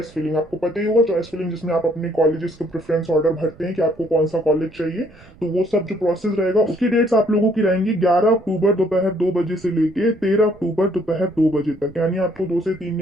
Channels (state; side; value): noise; right; rumble, 25 dB below the sound